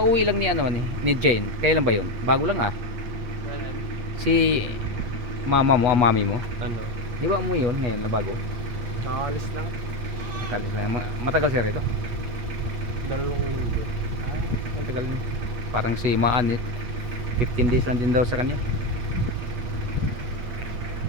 lang ni ano ni Jane. Kailan ba yun? Bago lang ah. Si mama mo, mami mo. Ano? Di ba umuwi yun ngayon na bago? Nakaalis lang. Kalis lang. Matagal siya rito. 2 linggo. Matagal na. Parang si Maan 15 days lang din daw sa kanya.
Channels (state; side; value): late; left; 8.6 ms